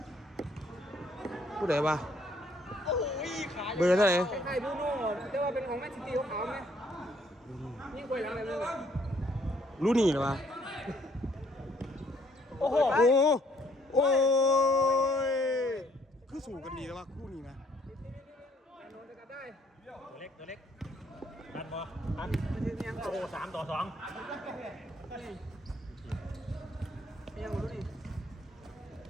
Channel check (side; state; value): both; normal; correlation 0.65